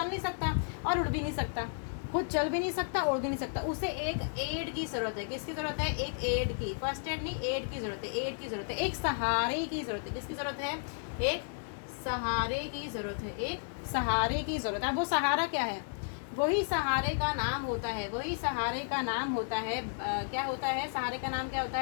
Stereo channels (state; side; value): silent; right; digital silence